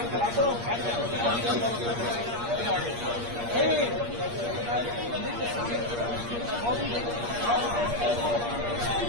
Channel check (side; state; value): left; late; 8.5 ms